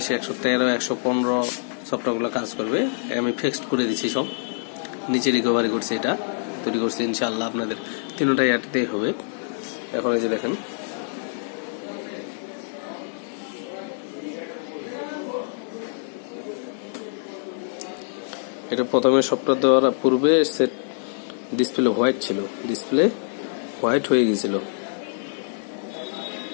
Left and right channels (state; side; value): silent; right; 56 dB below the other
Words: 113 115 সফটওয়্যারগুলো কাজ করবে। আমি ফিক্সড করে দিচ্ছি, সব নিচে রিকভারি করছি, এটা তৈরি করছি। ইনশাআল্লাহ আপনাদের তিনটাই এটাতেই হবে। এখন এই যে দেখেন, এটা প্রথমে সফটওয়্যার দেওয়ার পূর্বে সেট ডিসপ্লে হোয়াইট ছিল, ডিসপ্লে হোয়াইট হয়ে গেছিল।